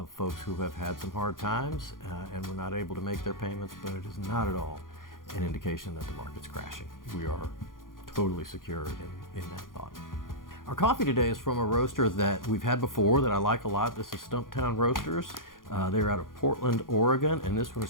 folks who have had some hard times and were not able to make their payments, but it is not at all an indication that the market's crashing. We are totally secure in that thought. Our coffee today is from a roaster that we've had before that I like a lot. This is Stumptown Roasters. They're out of Portland, Oregon, and this one is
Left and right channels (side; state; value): right; late; 0.90 ms